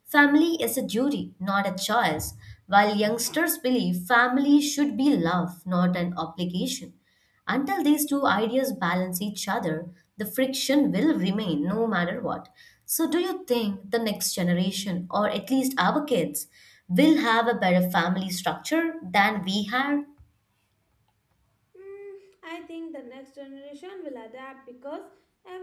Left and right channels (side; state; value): both; identical; correlation 1.00